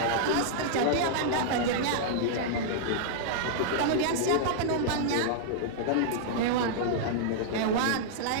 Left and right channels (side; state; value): both; different; correlation -0.02